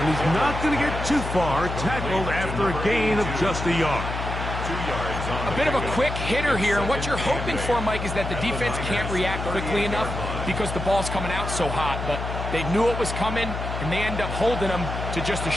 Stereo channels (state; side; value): noise; left; hum, 5 dB below the sound